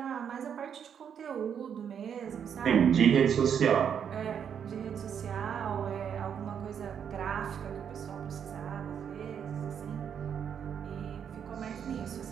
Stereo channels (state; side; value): quieter; left; 8.0 dB